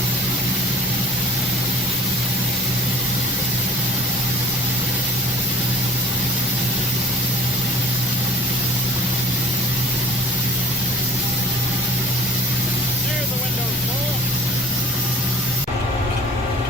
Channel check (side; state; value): both; normal; correlation 0.46